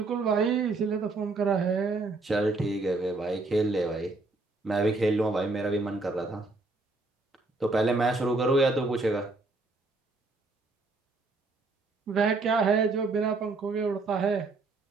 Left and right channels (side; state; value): left; quieter; 3.4 dB